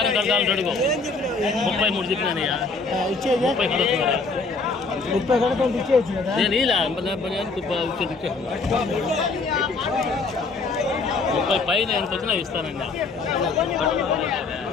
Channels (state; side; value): quieter; right; 4.1 dB